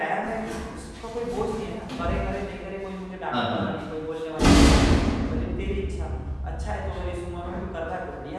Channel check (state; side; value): identical; both; correlation 1.00